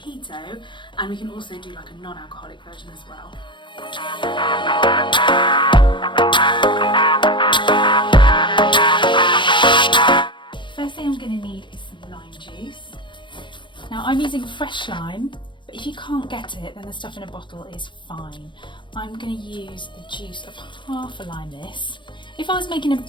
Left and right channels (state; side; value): late; right; 0.23 ms